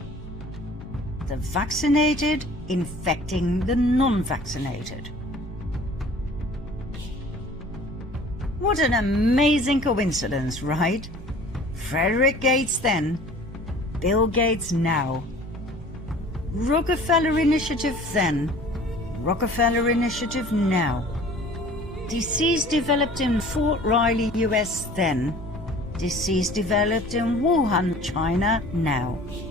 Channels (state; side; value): normal; both; correlation 0.48